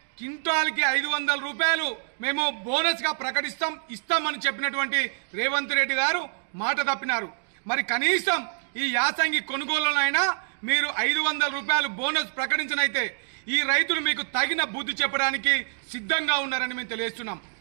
క్వింటాల్కి 500 రూపాయలు మేము బోనస్ గా ఇస్తామని చెప్పినటువంటి రేవంత్ రెడ్డి గారు మాట తప్పినారు। మరి కనీసం ఈ యాసంగి కొనుగోలులైనా మీరు 500 రూపాయలు బోనస్ ప్రకటించనైతే ఈ రైతులు మీకు తగిన బుద్ధి చెప్పడానికి సిద్ధంగా ఉన్నారని మేము తెలియజేస్తున్నాం।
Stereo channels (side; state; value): left; silent; digital silence